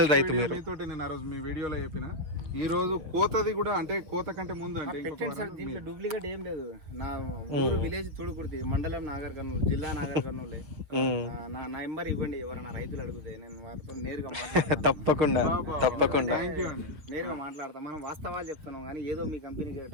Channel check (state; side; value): late; left; 6.8 ms